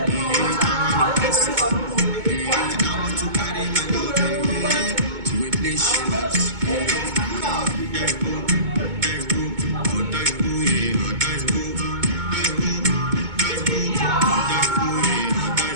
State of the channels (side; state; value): left; late; 2.2 ms